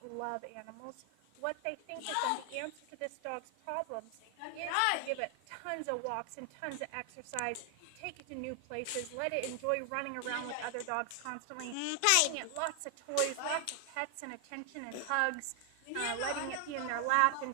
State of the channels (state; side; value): different; both; correlation 0.00